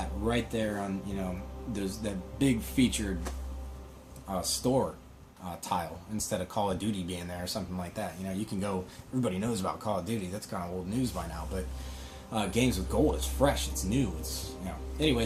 right there on, that big featured store tile, instead of Call of Duty being there or something like that. You can go, everybody knows about Call of Duty, that's kind of old news by now, but Games with Gold is fresh, it's new, it's,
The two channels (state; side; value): identical; both; correlation 1.00